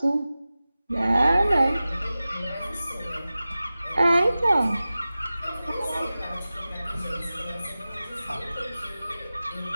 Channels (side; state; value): both; inverted; correlation -0.96